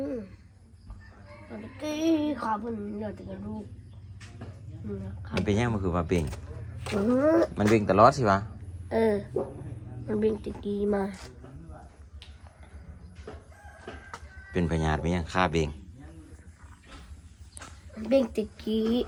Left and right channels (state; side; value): identical; both; correlation 1.00